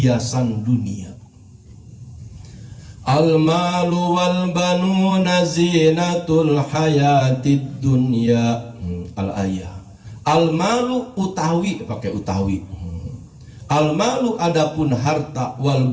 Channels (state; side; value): identical; both; correlation 1.00